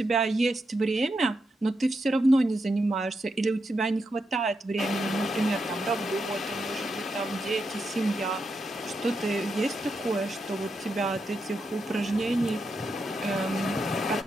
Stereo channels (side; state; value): both; normal; correlation 0.84